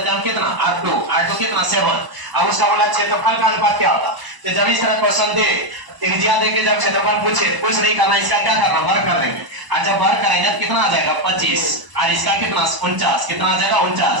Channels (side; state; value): left; late; 1.0 ms